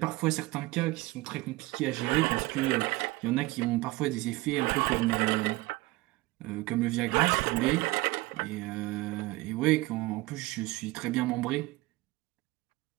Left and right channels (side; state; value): left; quieter; 20.9 dB